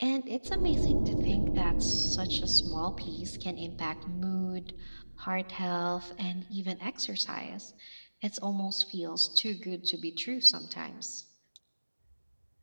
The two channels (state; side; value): inverted; both; correlation -1.00